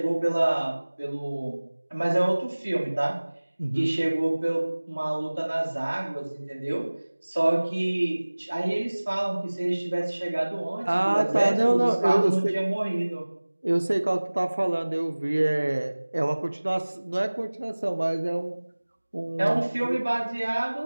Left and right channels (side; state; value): both; inverted; correlation -1.00